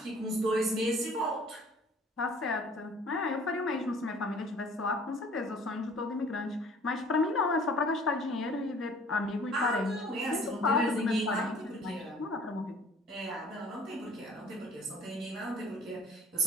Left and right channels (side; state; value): both; normal; correlation 0.52